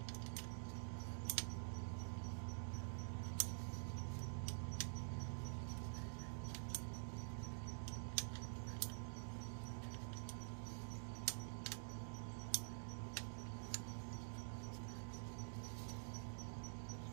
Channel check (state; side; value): silent; left; digital silence